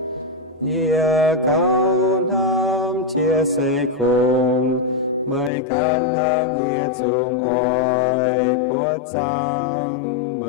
Ia cao nam chia sẻ cùng, mời can hang ia chung oi, Bố trang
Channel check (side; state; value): right; drops out; at 5.5 s